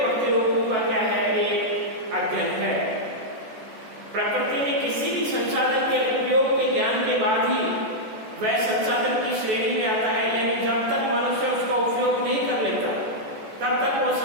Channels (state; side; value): late; left; 14 ms